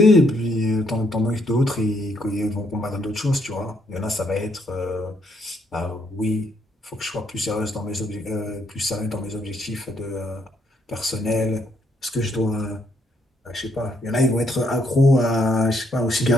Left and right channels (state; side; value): normal; both; correlation 0.73